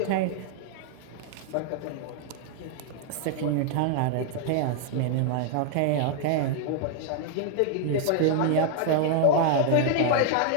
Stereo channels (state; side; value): different; both; correlation -0.01